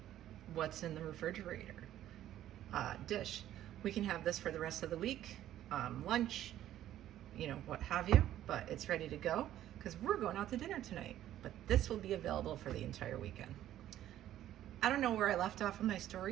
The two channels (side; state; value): left; quieter; 12.5 dB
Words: what's in the refrigerator dish. We can have this for the rest of the week, lunch, you know, what have you, but it's ready to go because we're going out to dinner tonight. But this will be available for the entire weekend. I don't know where I left off in my